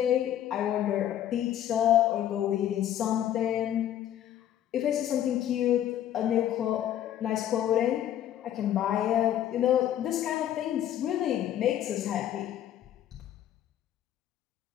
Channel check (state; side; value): quieter; right; 11.3 dB